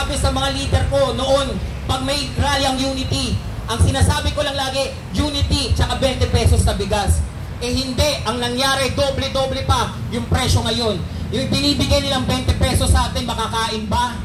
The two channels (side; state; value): both; identical; correlation 1.00